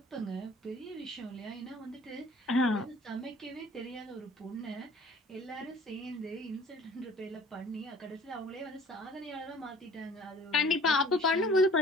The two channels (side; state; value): both; normal; correlation 0.51